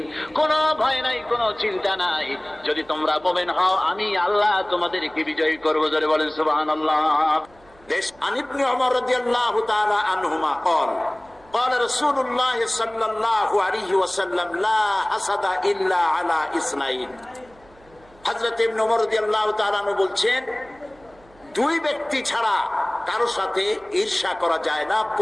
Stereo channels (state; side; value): noise; right; hum, 28 dB below the sound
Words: কোনো ভয় নাই, কোনো চিন্তা নাই, যদি তোমরা মুমিন হও আমি আল্লাহ তোমাদেরকে বিজয়ী করব। জোরে বলেন সুবহানাল্লাহ। عن ابن عمر رضي الله تعالى عنهما قال قال رسول الله صلى الله عليه وسلم لا حسد إلا على اثنين। হযরত ইবনে ওমর রাদিয়াল্লাহু তাআলা আনহু বলছেন, দুই ব্যক্তি ছাড়া কারো সাথে ঈর্ষা করা যায় না,